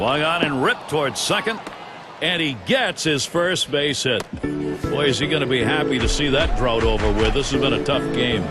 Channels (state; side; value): identical; both; correlation 1.00